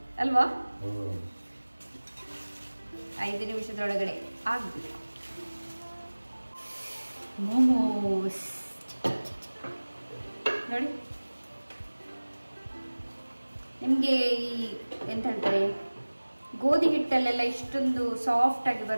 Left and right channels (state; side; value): inverted; both; correlation -1.00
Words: ಅಲ್ವಾ. 5 ನಿಮಿಷದೊಳಗಡೆ ಆಗ್ಬೇಕು. ಮೋಮೋಸ್ ನೋಡಿ, ನಿಮಗೆ ಈ ಎಂತ ಹೇಳ್ತಾರೆ, ಗೋಧಿ ಹಿಟ್ಟಲ್ಲೆಲ್ಲ ಇಷ್ಟೊಂದು ಸಾಫ್ಟ್ ಆಗಿ